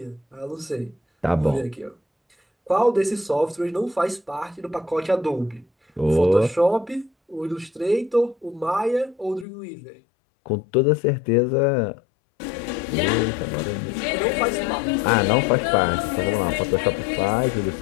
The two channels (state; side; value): drops out; right; at 9.5 s